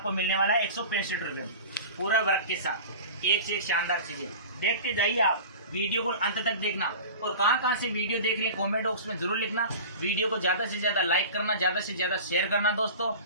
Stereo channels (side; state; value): both; inverted; correlation -0.35